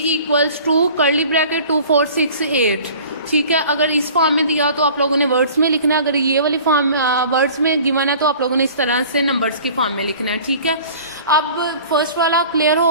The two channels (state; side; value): inverted; both; correlation -0.46